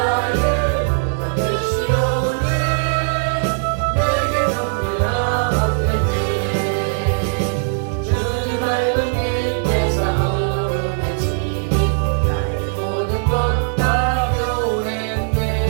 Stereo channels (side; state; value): left; silent; 66 dB below the other